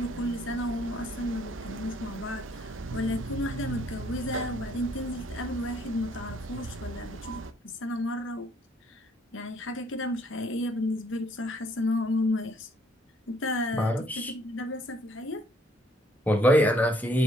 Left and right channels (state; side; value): normal; both; correlation 0.64